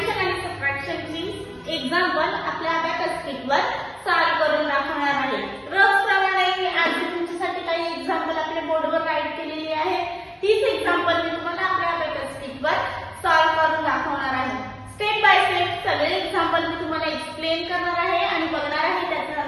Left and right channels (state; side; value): identical; both; correlation 1.00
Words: आणि सबट्रॅक्शनची एक्झाम्पल आपल्या अबॅकस शीटवर सॉल्व्ह करून दाखवणार आहे. रोजप्रमाणे मी आज तुमच्यासाठी काही एक्झाम्पल आपल्या बोर्डवर राईट केलेली आहे. तीच एक्झाम्पल मी तुम्हाला आपल्या अबॅकस शीटवर सॉल्व्ह करून दाखवणार आहे. स्टेप बाय स्टेप सगळे एक्झाम्पल मी तुम्हाला एक्सप्लेन करणार आहे आणि बघणार आहे त्याचं